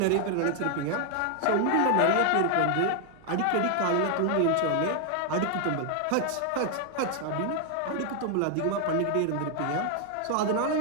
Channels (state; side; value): different; both; correlation 0.00